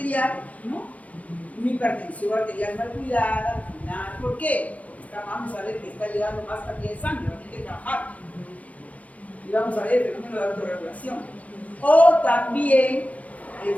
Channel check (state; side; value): late; right; 0.069 ms